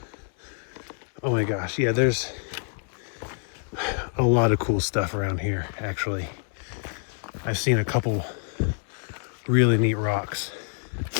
Oh my gosh, yeah, there's a lot of cool stuff around here, actually. I've seen a couple really neat rocks.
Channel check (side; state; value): right; silent; 55 dB below the other